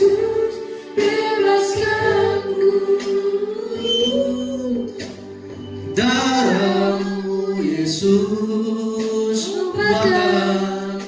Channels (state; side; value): identical; both; correlation 1.00